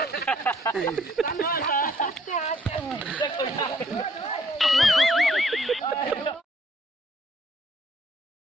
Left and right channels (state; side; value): normal; both; correlation 0.64